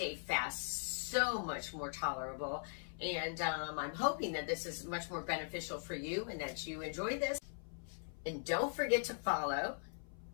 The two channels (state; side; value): silent; right; 51 dB below the other